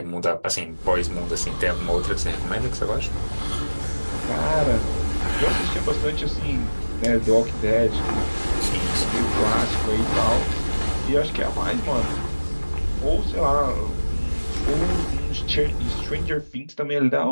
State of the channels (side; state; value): both; inverted; correlation -1.00